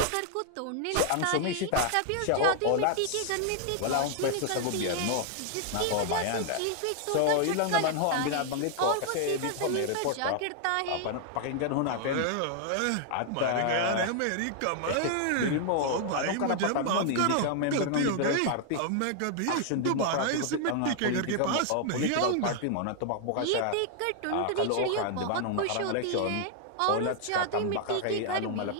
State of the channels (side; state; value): both; different; correlation 0.00